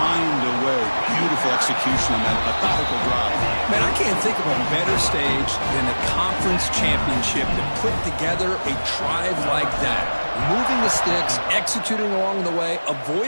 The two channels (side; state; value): both; inverted; correlation -1.00